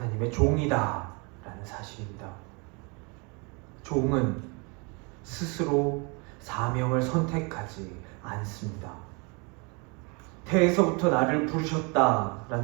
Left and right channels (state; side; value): quieter; left; 31.5 dB